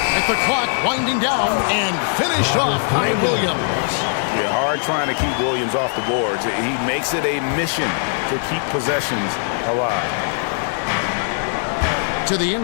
At the clock, winding down and finished off by Williams. Yeah, hard trying to keep Williams off the boards. He makes it a mission to keep possessions alive. To the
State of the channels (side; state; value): right; silent; digital silence